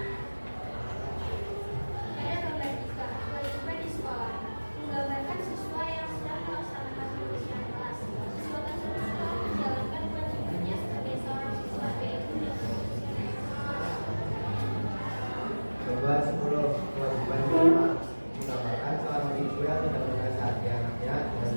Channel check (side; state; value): both; inverted; correlation -1.00